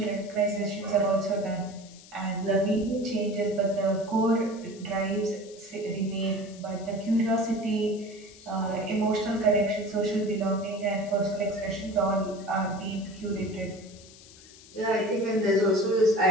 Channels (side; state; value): left; noise; hiss, 21 dB below the sound